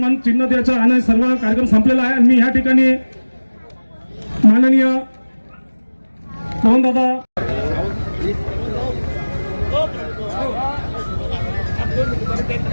चिन्ह द्यायचा आणि सर्व कार्यक्रम संपलेला आहे. आणि मी ह्या ठिकाणी माननीय पवनदादा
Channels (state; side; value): inverted; both; correlation -1.00